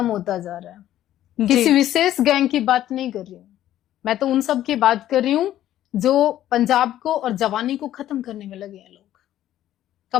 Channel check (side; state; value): right; quieter; 12.6 dB